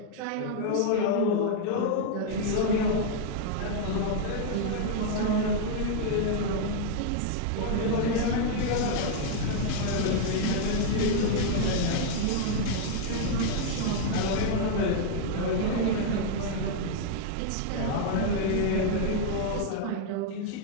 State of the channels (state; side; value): different; both; correlation -0.01